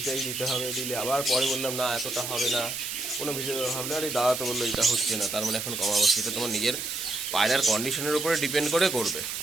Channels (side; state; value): right; noise; hiss, 5 dB below the sound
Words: দিতে হবে, দিলে আবার পরে বললাম না এতটা হবে না, কোনো ভিডিও ভাবলে আর এই দাদা তো বললো এটা হচ্ছে না, তার মানে এখন কমাবো। সেটা তোমার নিজের পায়রার কন্ডিশনের উপরে ডিপেন্ড করে করবে,